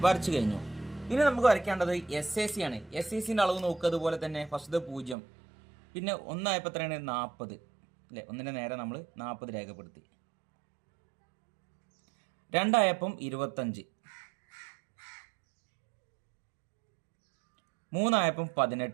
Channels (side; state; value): left; drops out; at 5.2 s